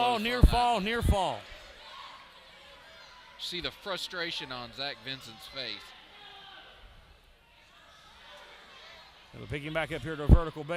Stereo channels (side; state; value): both; identical; correlation 1.00